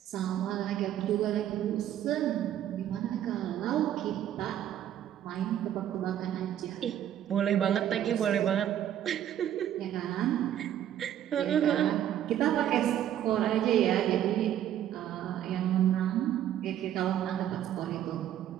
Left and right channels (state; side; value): quieter; left; 11.1 dB